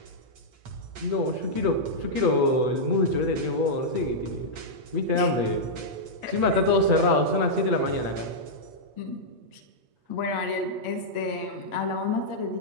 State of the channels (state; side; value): late; left; 8.2 ms